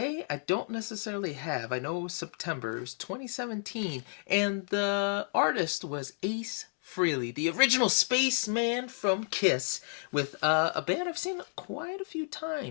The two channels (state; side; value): silent; right; digital silence